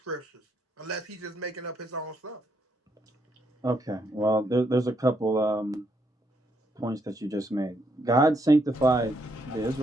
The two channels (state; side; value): normal; both; correlation 0.75